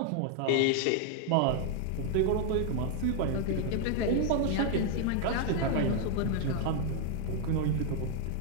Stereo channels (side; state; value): both; different; correlation 0.00